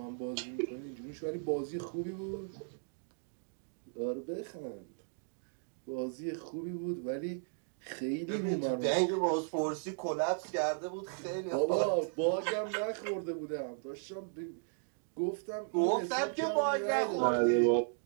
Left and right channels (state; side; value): silent; left; digital silence